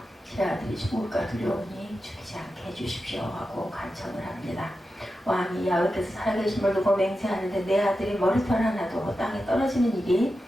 제 아들이 죽을까 두려우니 죽이지 않게 해주십시오 하고 간청을 합니다. 왕이 야훼께서 살아계심을 두고 맹세하는데 내 아들이 머리털 하나도 땅에 떨어지는 일이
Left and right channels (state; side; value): normal; both; correlation 0.91